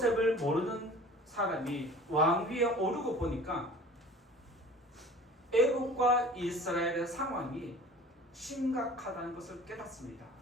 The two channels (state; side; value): normal; both; correlation 0.44